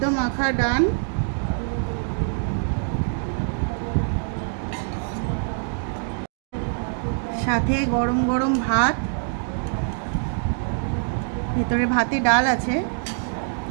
মাখা ডান। সাথে গরম গরম ভাত, ভেতরে ভাতে ডাল আছে।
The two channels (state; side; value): silent; left; 62 dB below the other